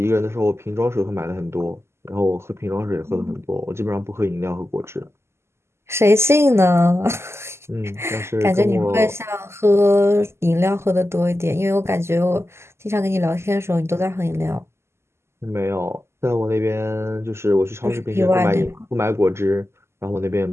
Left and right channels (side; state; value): left; late; 0.13 ms